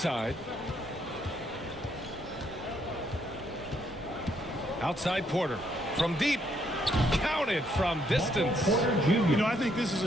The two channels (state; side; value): normal; both; correlation 0.72